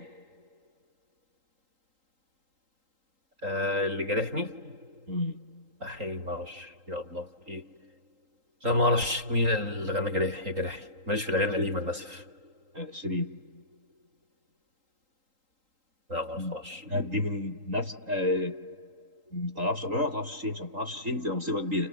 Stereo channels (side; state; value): left; late; 3.8 ms